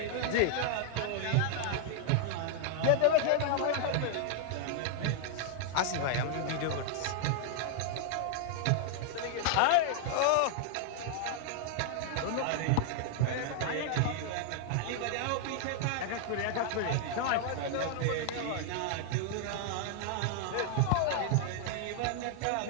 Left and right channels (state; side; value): different; both; correlation 0.00